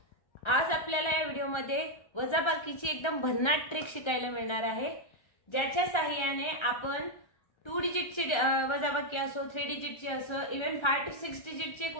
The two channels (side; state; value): right; late; 1.3 ms